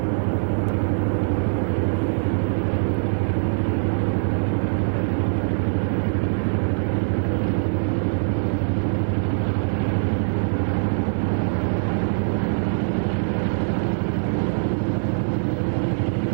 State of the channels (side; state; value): left; silent; digital silence